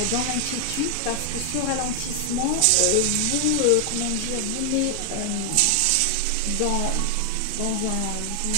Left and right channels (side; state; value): both; different; correlation 0.00